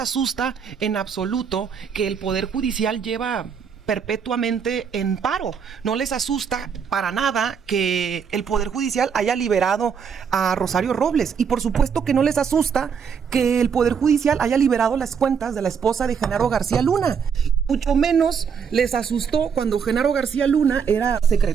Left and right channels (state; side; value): quieter; left; 6.8 dB